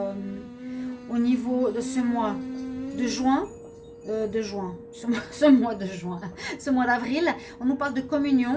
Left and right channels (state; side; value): identical; both; correlation 1.00